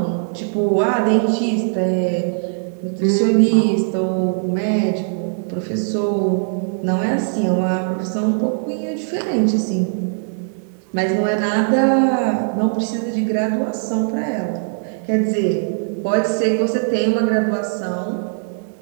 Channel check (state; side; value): silent; left; digital silence